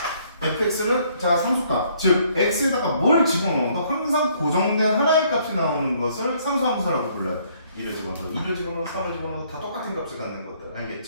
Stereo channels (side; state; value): both; inverted; correlation -0.65